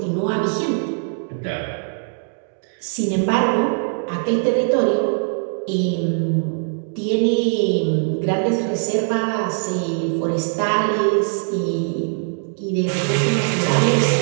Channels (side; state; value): left; silent; 58 dB below the other